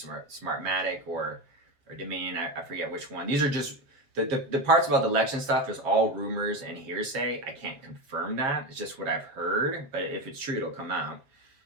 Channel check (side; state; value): left; late; 7.5 ms